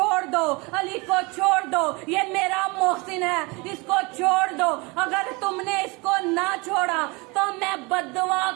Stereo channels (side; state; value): left; quieter; 27.1 dB